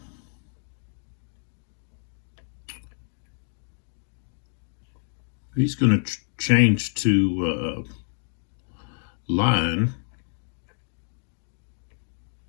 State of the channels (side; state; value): right; silent; digital silence